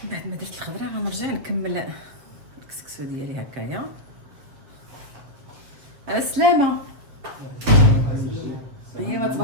بعد ما درت الخضره غنرجع نكمل الكسكسو ديالي هكايا. على السلامه. ايوا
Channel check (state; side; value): late; left; 7.5 ms